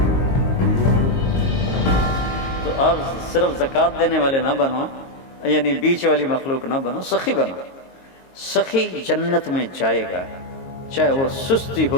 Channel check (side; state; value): right; late; 22 ms